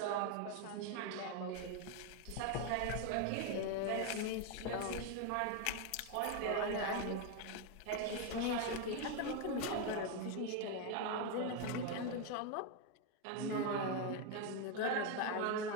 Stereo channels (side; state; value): both; different; correlation 0.01